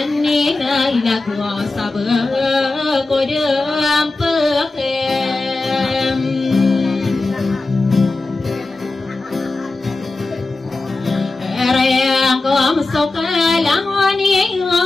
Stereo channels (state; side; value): quieter; right; 3.3 dB